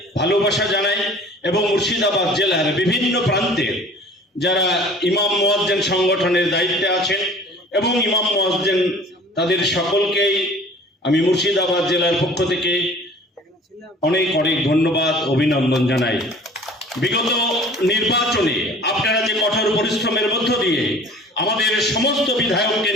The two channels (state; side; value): normal; both; correlation 0.47